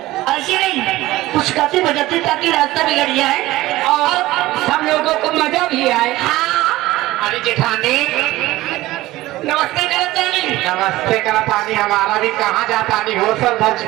ऐसी नहीं, कुछ गाते बजाते ताकि रास्ता बिगड़ जाए और हम लोगों को मजा भी आए। हाँ। अरे जेठानी नमस्ते करतानी। नमस्ते करतानी। हमारा भी कहाँ जाता नहीं हो सर धज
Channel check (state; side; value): quieter; left; 17.5 dB